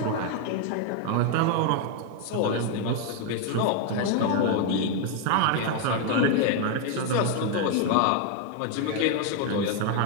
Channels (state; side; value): different; both; correlation 0.01